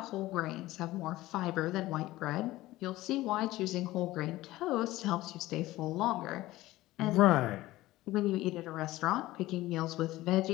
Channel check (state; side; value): quieter; right; 17.3 dB